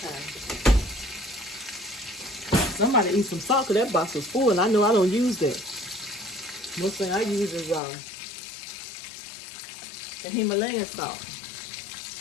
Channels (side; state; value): right; drops out; at 7.8 s